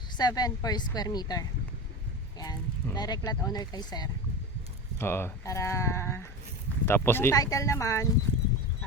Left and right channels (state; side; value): normal; both; correlation 0.26